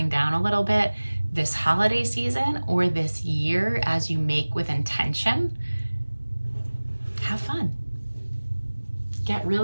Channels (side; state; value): both; inverted; correlation -1.00